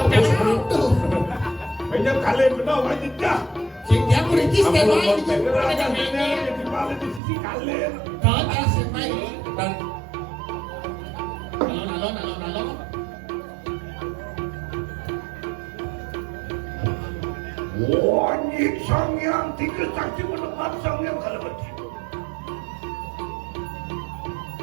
yang tuh. Banyak kali benar wajib dah. Dia kuritis dia main. Benar ada benar di balik di sisi kalian. Kau tak semai. dan Alon. Wajib sang yang tiga saksi menepat sang yang kalau begitu.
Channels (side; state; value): left; drops out; at 7.2 s